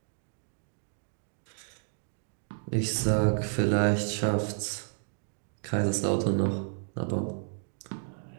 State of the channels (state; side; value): silent; left; digital silence